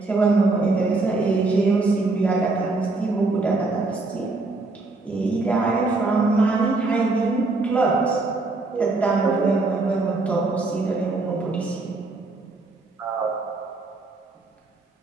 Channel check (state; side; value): quieter; left; 3.4 dB